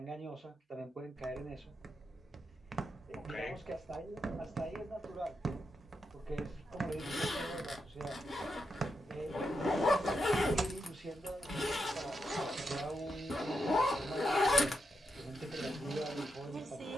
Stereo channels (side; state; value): both; normal; correlation 0.85